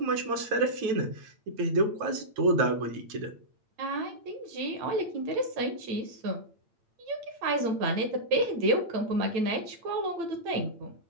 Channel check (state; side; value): late; left; 8.8 ms